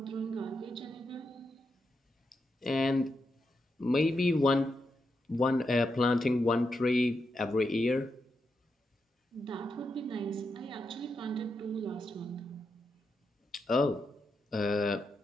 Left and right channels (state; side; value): normal; both; correlation 0.85